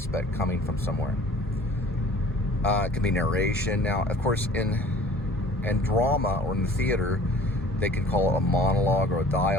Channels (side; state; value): both; normal; correlation 0.49